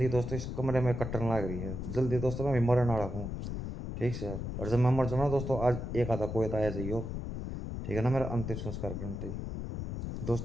दोस्तों इस कमरे में कट्टन लग रही है, जल्दी दोस्तों मैं भी मरने वाला हूँ, ठीक से। और जब मैं मर जाऊँ ना दोस्तों आज एक आधा कोई तो आया जाइयो, ठीक है ना, मेरा अंतिम संस्कार करते ही।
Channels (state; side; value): noise; left; rumble, 5 dB below the sound